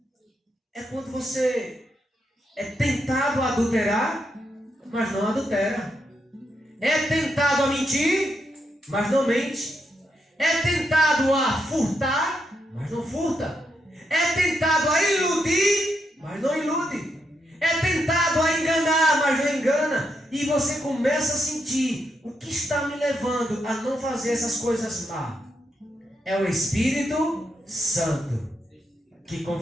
É quando você é tentado a adulterar, mas não adultera. É tentado a mentir, mas não mente. É tentado a furtar, mas não furta. É tentado a iludir, mas não ilude. É tentado a enganar, mas não engana. E você começa a sentir: o que está me levando a não fazer essas coisas má? É o Espírito Santo que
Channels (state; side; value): normal; both; correlation 0.81